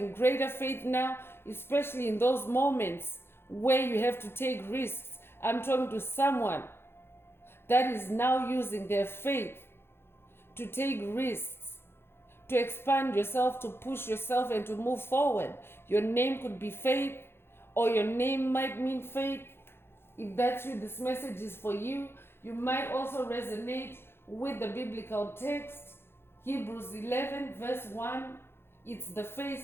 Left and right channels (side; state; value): right; late; 0.11 ms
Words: greater faith now, especially in those moments where you have to take risks. I'm talking to someone that is now using their faith to take risks, to expand yourself, to push yourself and to move forward. Your name could be Faith or your name might mean faith. If that's you, this message is for you. You might also resonate with the biblical text, Hebrews 11 verse 1. It's the